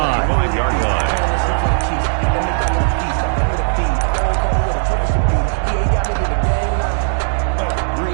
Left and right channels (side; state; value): left; silent; 60 dB below the other